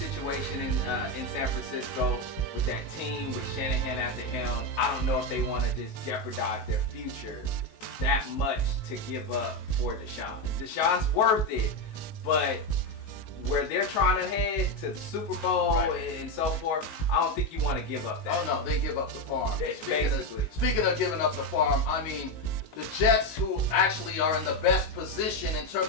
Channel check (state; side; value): late; right; 19 ms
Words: in San Francisco with that team, with Shanahan at the helm. I don't know if they want to just jeopardize their future that much to give up for Deshaun. Deshaun's worth it, but where they're trying to head to the Super Bowl and so forth, I don't think you want to give up that. Oh no, they give up the farm. Basically. Speaking of giving up the farm, I mean, the Jets, who actually are in the best position in